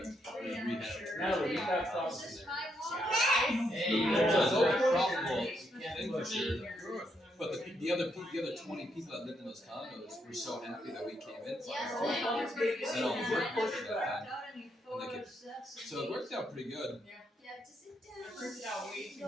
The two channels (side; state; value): both; normal; correlation 0.77